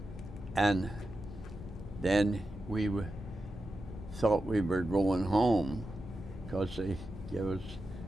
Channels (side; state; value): both; normal; correlation 0.90